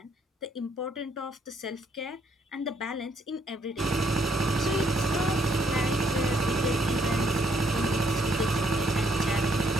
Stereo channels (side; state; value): both; normal; correlation 0.70